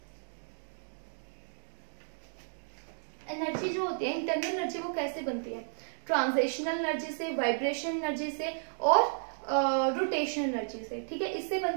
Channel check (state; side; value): silent; left; digital silence